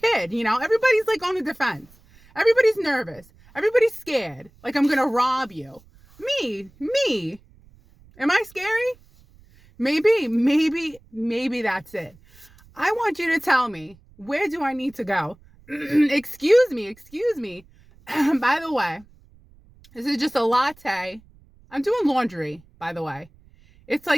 Everybody's like on the defense. Everybody's nervous. Everybody's scared. Like I'm going to rob you. Me. Am I scary? Maybe that's it. I want you to tell me, where do I need to go? Excuse me. By the way, this is just a latte. I'm doing laundry, by the way. It's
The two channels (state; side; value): noise; right; rumble, 27 dB below the sound